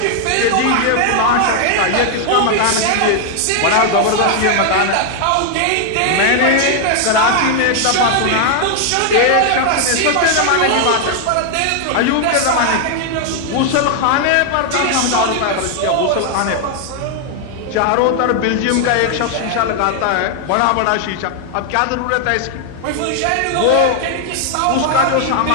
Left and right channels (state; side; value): different; both; correlation 0.00